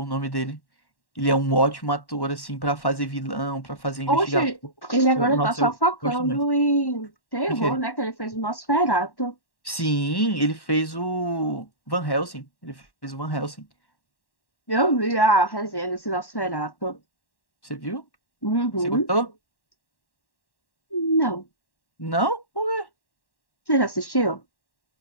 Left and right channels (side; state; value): right; late; 1.1 ms